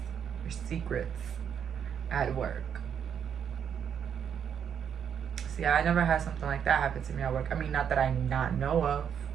your secrets at work. See, I never had something like that happen to me at work. I mean, not that I not know of.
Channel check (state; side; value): quieter; left; 8.1 dB